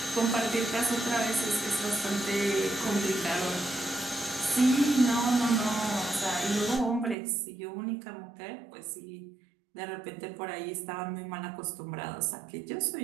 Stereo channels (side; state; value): left; drops out; at 7.2 s